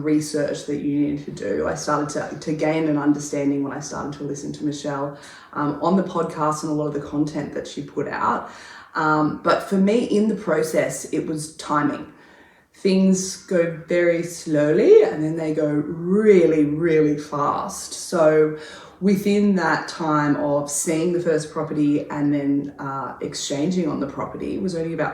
research that you needed to do. I started to gain an understanding when I started to listen to Michelle on the podcast and a lot of the content that she put out. But for me, in the process, it was timing. Things go very slowly and then they go really, really fast. So within that time of seeing the first property and then exchanging on the property was only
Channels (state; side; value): identical; both; correlation 1.00